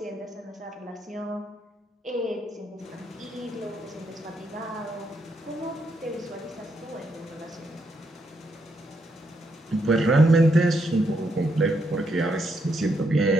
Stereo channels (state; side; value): normal; both; correlation 0.78